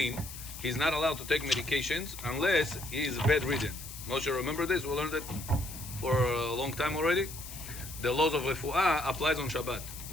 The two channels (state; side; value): noise; left; hiss, 12 dB below the sound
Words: he's not allowed to take medications unless he is bedridden. Moshe, remember this? We learned it for a long time already. The laws of refuah applies on Shabbat.